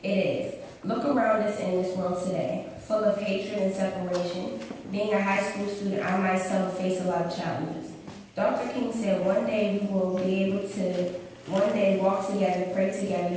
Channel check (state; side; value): identical; both; correlation 1.00